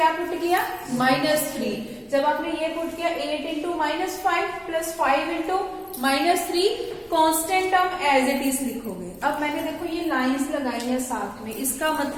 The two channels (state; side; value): identical; both; correlation 1.00